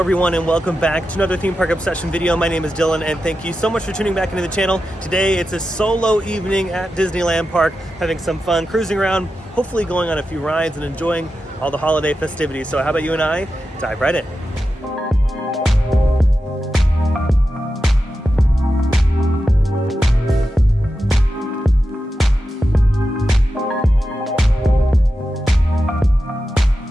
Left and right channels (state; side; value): normal; both; correlation 0.90